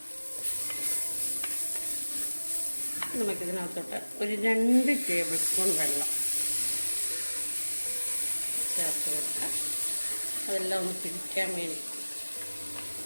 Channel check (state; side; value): inverted; both; correlation -1.00